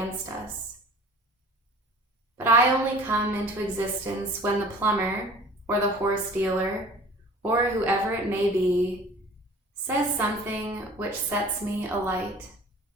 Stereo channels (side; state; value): both; normal; correlation 0.45